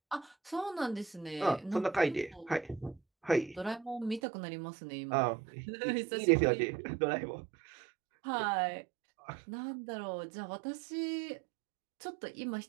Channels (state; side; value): drops out; left; at 4.2 s